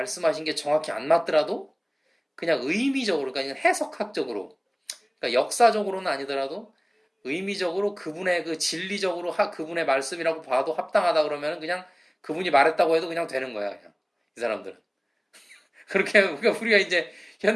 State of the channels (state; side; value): identical; both; correlation 1.00